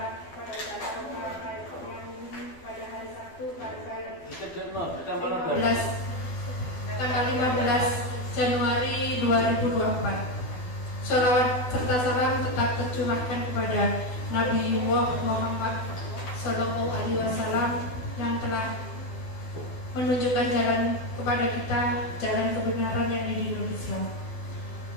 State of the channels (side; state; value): right; late; 12 ms